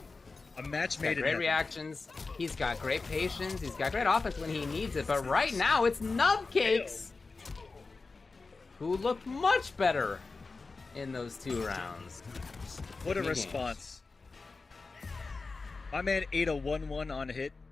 A match made in great heaven. reactions. He's got great patience. He's got great offense when he needs it. But right now, it's Nubcakes, who looked much better in those 2 rounds. What a response. My man ate a 1-1 on hit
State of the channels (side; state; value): right; quieter; 4.0 dB